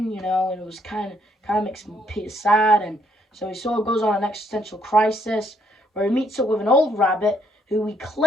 And it was kind of makes Peter sad, and so he sort of goes on an existential crisis where he meets up with an old rabbit who he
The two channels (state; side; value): normal; both; correlation 0.70